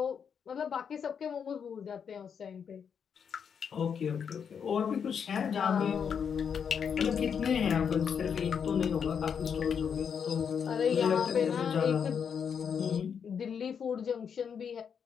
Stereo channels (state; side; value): quieter; right; 7.1 dB